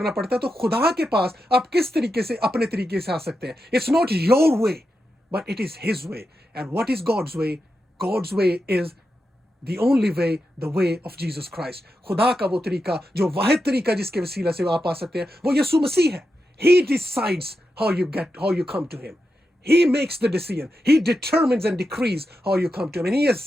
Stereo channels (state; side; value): normal; both; correlation 0.88